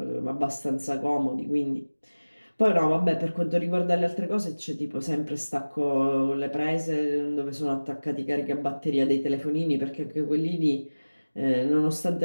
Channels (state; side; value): inverted; both; correlation -1.00